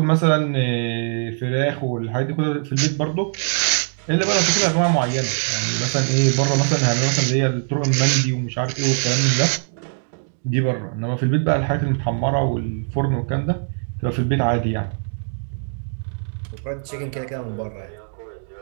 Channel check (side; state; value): left; silent; 64 dB below the other